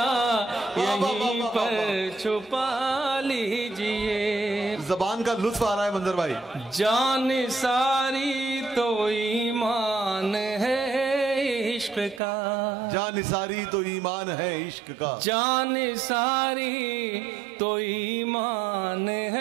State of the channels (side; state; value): left; drops out; at 12.2 s